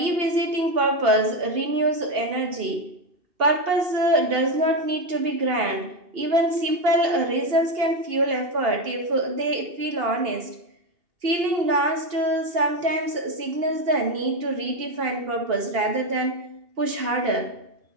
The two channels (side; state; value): left; late; 2.8 ms